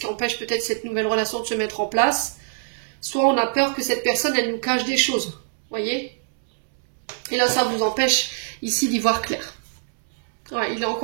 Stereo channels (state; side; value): silent; left; 63 dB below the other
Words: empêche peut-être cette nouvelle relation de se mettre en place. Soit on a peur que cette personne, elle nous cache des choses, voyez? Et là ça vous empêche ici d'y voir clair. Ouais, il est